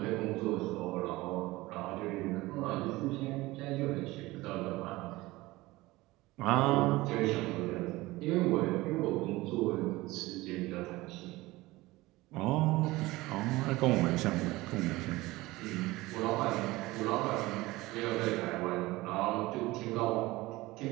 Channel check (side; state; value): left; quieter; 19.8 dB